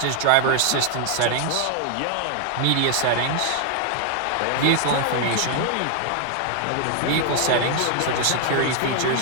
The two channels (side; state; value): both; different; correlation 0.00